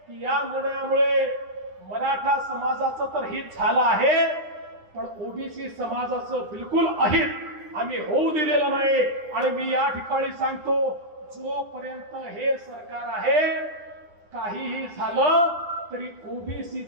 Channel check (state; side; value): late; left; 9.9 ms